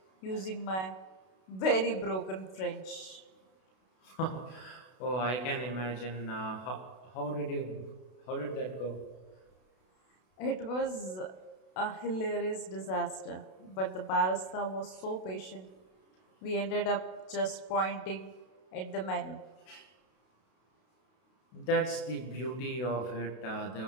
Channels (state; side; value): late; right; 32 ms